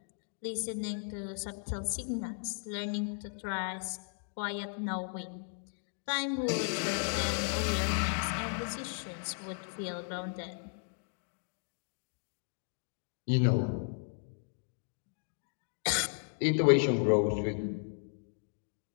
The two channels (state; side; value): silent; right; 54 dB below the other